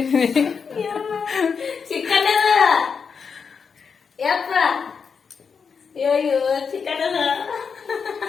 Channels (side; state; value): right; quieter; 5.9 dB